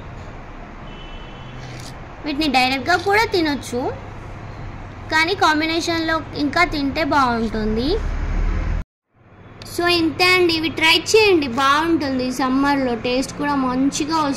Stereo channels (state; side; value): identical; both; correlation 1.00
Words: వీటిని డైరెక్ట్గా కూడా తినొచ్చు, కానీ కాంబినేషన్లో ఇంకా తింటే బాగుంటుంది. సో ఇంతే అండి, ఇవి ట్రై చేయండి, బాగుంటుంది. సమ్మర్లో టేస్ట్ కూడా మంచిగా